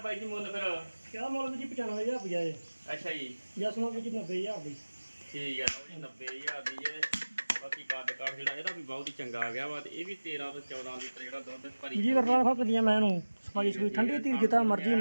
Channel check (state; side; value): inverted; both; correlation -1.00